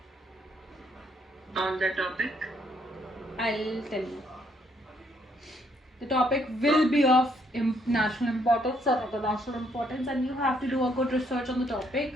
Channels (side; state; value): both; normal; correlation 0.70